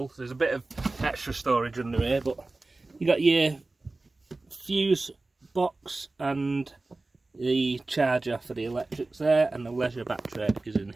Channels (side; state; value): left; quieter; 3.2 dB